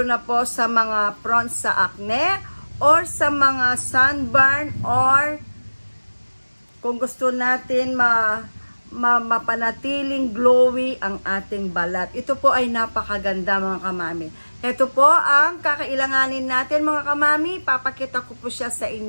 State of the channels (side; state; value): both; inverted; correlation -1.00